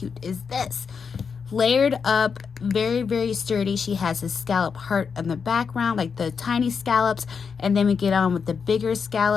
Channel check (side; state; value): right; quieter; 6.0 dB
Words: is this? Layered up, very sturdy. She has a scallop heart in the background, like the tiny scallops, and then we get on with the bigger